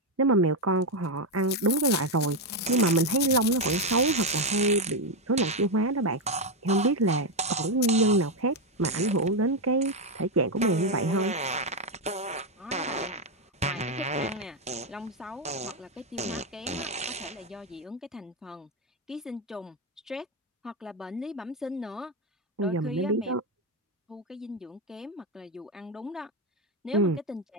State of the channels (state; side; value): normal; both; correlation 0.06